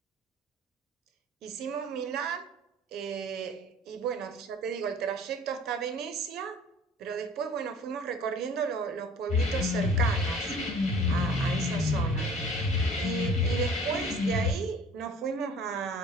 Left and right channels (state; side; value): normal; both; correlation 0.48